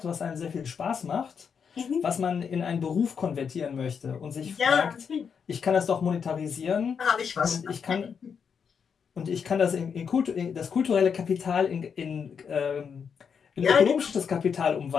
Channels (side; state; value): right; quieter; 6.7 dB